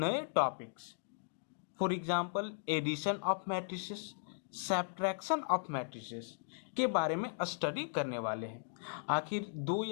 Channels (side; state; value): right; silent; digital silence